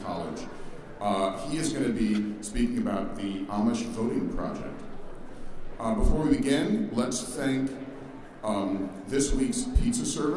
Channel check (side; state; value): both; identical; correlation 1.00